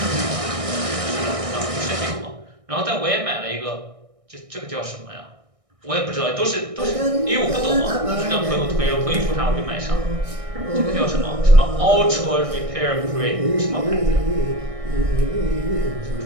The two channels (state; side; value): late; left; 1.6 ms